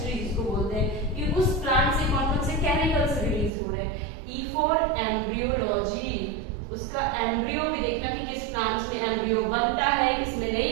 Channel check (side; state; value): left; drops out; at 3.5 s